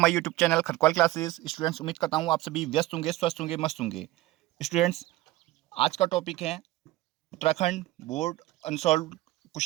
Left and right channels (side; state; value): left; quieter; 17.3 dB